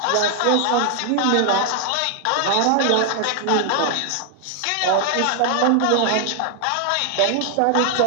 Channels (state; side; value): different; both; correlation 0.00